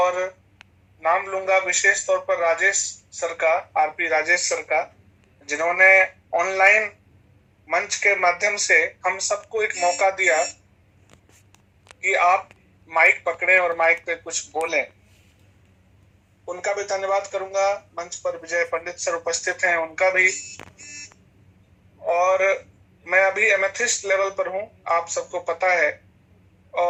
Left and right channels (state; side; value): identical; both; correlation 1.00